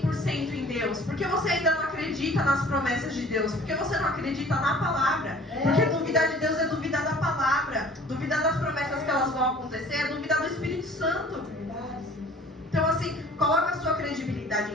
em Deus? Por que você ainda não acredita nas promessas de Deus? Por que você não acredita na palavra? Porque duvidar de Deus é duvidar da palavra. Duvidar das promessas que elas vão acontecer é duvidar do Espírito Santo. Então assim, coloca a sua credibilidade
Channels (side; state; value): both; normal; correlation 0.50